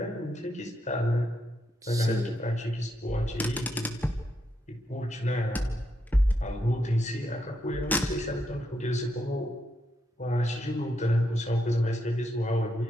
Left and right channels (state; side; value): normal; both; correlation 0.80